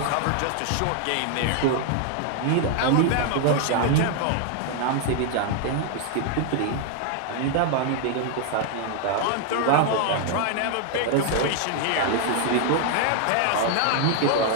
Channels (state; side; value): different; both; correlation 0.00